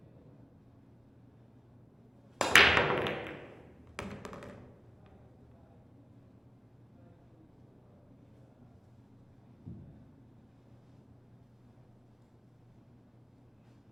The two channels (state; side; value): normal; both; correlation 0.98